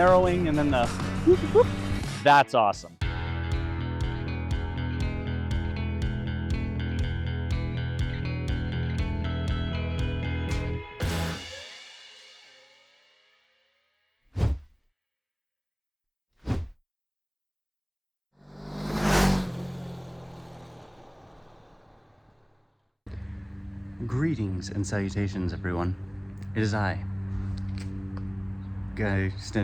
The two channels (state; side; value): identical; both; correlation 1.00